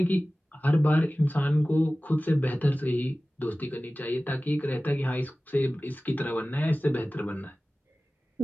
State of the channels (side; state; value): both; normal; correlation 0.97